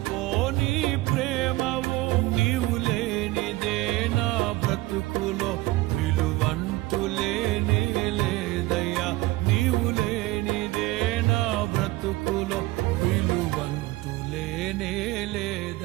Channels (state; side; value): quieter; left; 19.3 dB